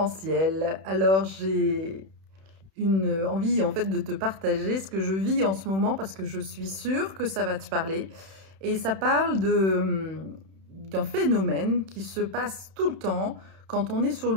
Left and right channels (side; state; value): left; late; 31 ms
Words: Alors j'ai une envie en fait de te partager ce que je vis en ce moment parce que je suis sûre que ça va te parler. Et ça parle d'un phénomène qui se passe tout le temps quand on est sur